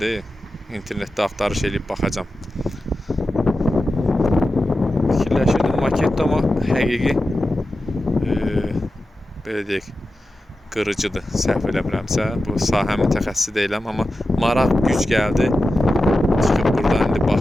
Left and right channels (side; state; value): both; normal; correlation 0.92